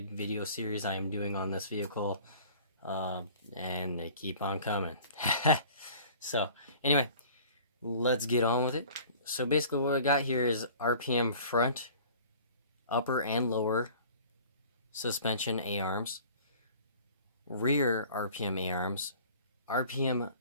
video series I am doing on this vehicle, and they keep on coming. So anyway, let's get on with it. So basically what I got here is RPM front, upper and lower suspension A-arms, rear RPM A-arms, RPM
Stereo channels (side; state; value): both; inverted; correlation -0.47